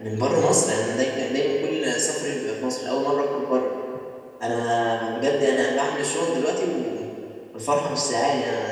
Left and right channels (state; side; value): identical; both; correlation 1.00